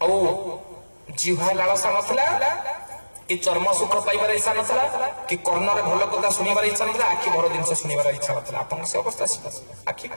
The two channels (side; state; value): both; inverted; correlation -1.00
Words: औ जीवा लालसा नथला कि चर्म सुख पाइबार इच्छा नथला कि कर्ण रे भलो कथा सुनिबार इच्छा नथला आखि भरो दिन से सुनिबार इच्छा नथला आपन से अवस्था आखि